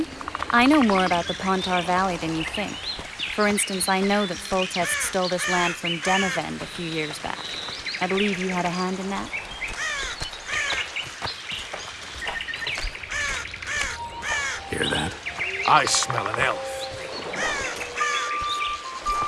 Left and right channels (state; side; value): identical; both; correlation 1.00